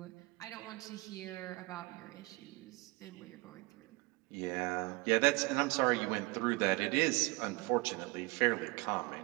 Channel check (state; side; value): quieter; left; 24.5 dB